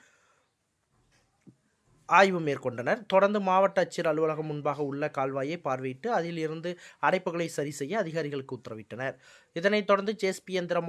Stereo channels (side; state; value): both; identical; correlation 1.00